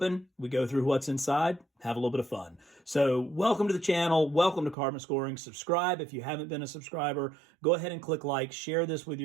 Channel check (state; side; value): drops out; left; at 4.8 s